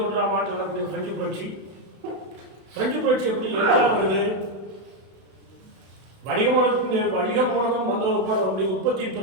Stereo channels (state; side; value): late; left; 32 ms